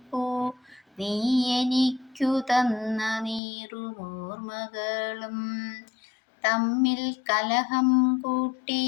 നീ എനിക്കു തന്ന നീറുമോർമകളും. തമ്മിൽ കലഹം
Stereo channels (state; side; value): drops out; right; at 3.4 s